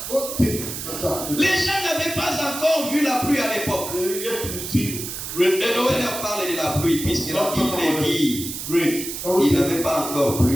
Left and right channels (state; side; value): noise; right; hiss, 7 dB below the sound